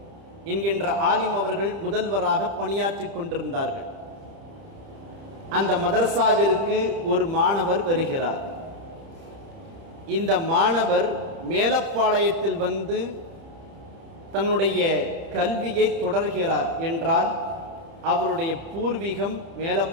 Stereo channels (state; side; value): late; left; 30 ms